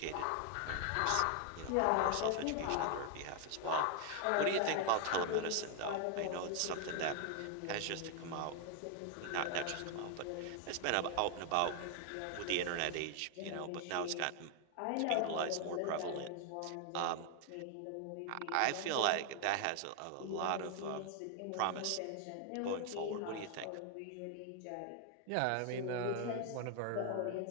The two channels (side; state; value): both; different; correlation 0.00